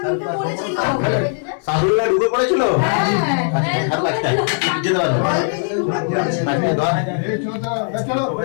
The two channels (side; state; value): right; silent; digital silence